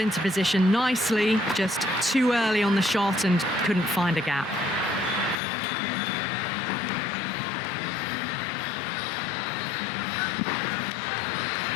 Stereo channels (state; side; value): drops out; right; at 5.4 s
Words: position nicely, just too early on the shot and couldn't find a gap.